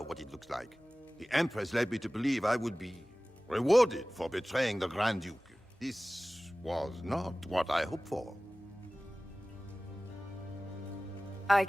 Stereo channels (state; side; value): normal; both; correlation 0.98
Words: what it looks like. The Empress led me to believe I would be rewarded for betraying the Grand Duke. This was not what I hoped for. I